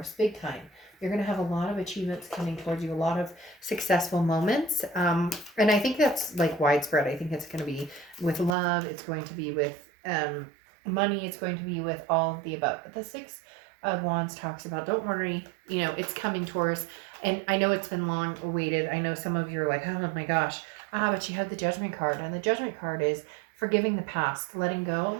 big time. You're going to have a lot of achievements coming towards you, a lot of successful moments. And I think that's like widespread. I think it's going to be with love. It's going to be with money. It's going to be with all of the above. But the Six of Wands talks about, don't worry, you know, it's coming, Taurus. And I know it's been long awaited. I know some of you are like, oh my gosh. But you have the Judgment card. And the Judgment card is forgiving the past, letting go,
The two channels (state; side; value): drops out; left; at 8.6 s